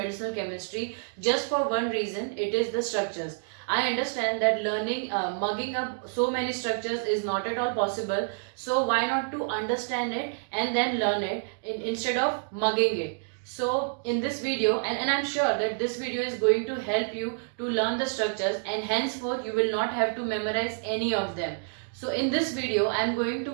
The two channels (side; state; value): left; silent; digital silence